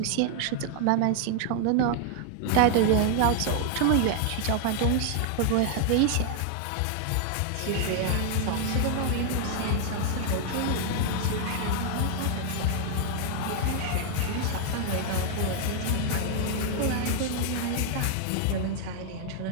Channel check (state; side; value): different; both; correlation 0.00